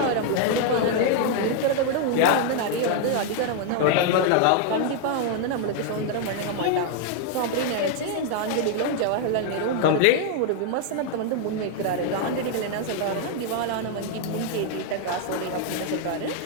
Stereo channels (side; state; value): both; different; correlation 0.00